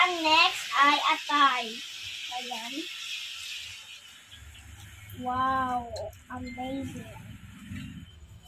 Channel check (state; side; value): identical; both; correlation 1.00